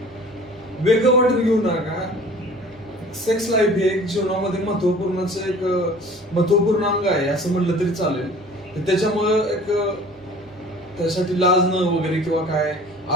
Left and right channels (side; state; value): right; noise; hum, 28 dB below the sound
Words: वेगळं वाटून घेऊ नका. सेक्स लाईफ हे एक जीवनामध्ये महत्वपूर्ण अंग आहे असं म्हणलं तरी चालेल. त्याच्यामुळे त्यासाठी लाजणं वगैरे किंवा काय,